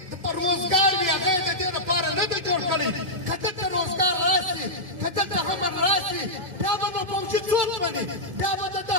روزګار وي. هغه یې د دې لپاره نه دی جوړ کړی. که دلته روزګار راشي، که دلته امن راشي، بیا به نو فوجي څوک مني؟ بیا به د ده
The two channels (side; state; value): left; late; 1.9 ms